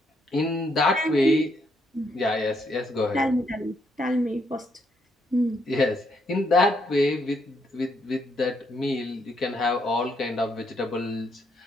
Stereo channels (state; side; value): normal; both; correlation 0.75